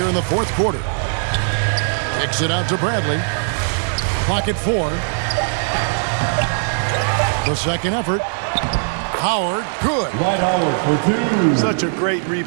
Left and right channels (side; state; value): left; silent; digital silence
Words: in the fourth quarter. Kicks it out to Bradley. Clock at 4. The second effort. Howard, good. Dwight Howard for 2. Such a great